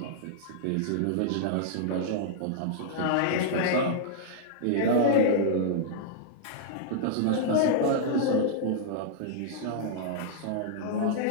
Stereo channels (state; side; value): different; both; correlation -0.02